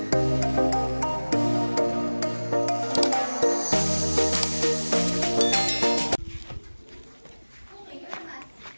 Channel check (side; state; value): both; inverted; correlation -1.00